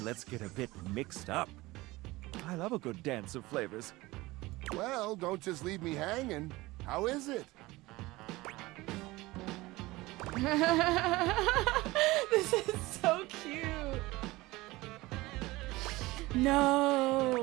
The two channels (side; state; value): left; quieter; 20.1 dB